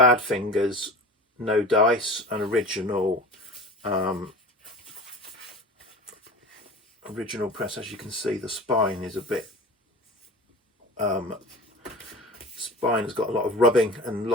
No Dice, an original press. As you can see, the spine is a bit spine has got a lot of rubbing and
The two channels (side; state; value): both; normal; correlation 0.35